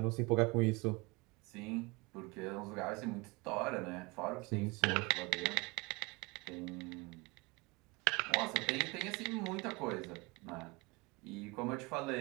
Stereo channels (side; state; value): left; quieter; 26.1 dB